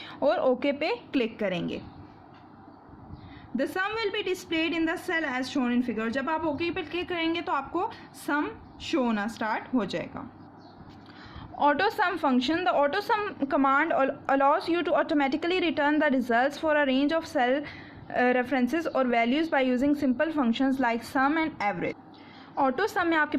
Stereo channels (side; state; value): both; identical; correlation 1.00